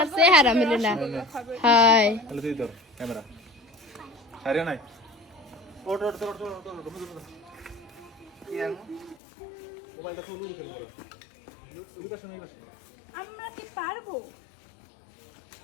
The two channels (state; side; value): drops out; right; at 9.2 s